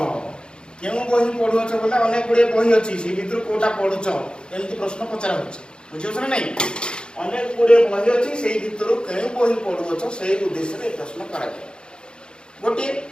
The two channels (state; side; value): late; right; 0.050 ms